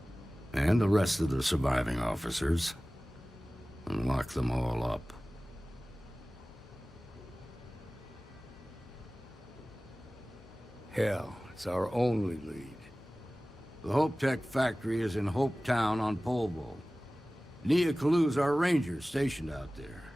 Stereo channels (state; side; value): normal; both; correlation 0.97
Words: and the rest of the surviving officers, and locked them all up. Hell, it's our only lead. The Hope Tech factory is in Hope Town on Polvo. Nia Kalu's our ranger stationed out there.